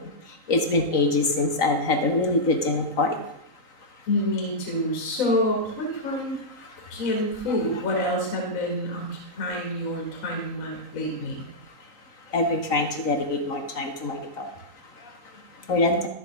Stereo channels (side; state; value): right; late; 3.9 ms